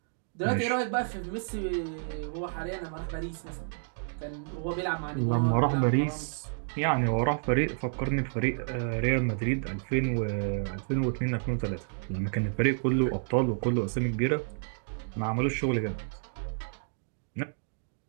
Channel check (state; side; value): silent; left; digital silence